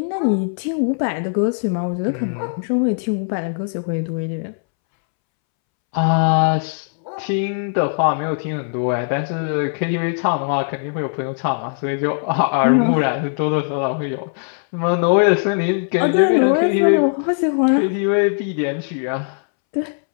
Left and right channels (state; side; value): silent; right; 66 dB below the other